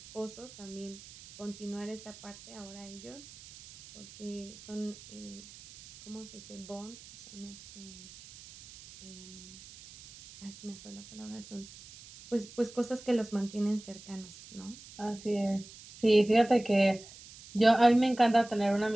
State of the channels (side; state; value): right; noise; hiss, 18 dB below the sound